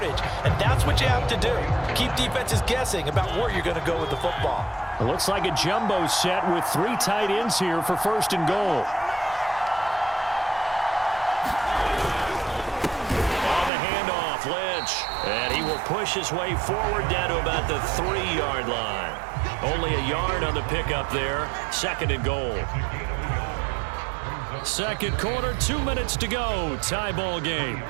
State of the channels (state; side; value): drops out; left; at 13.7 s